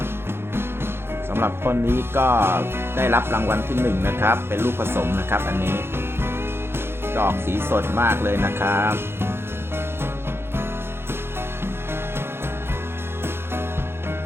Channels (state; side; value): late; left; 0.11 ms